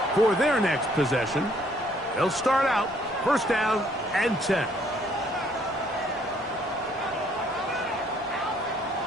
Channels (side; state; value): both; normal; correlation 0.64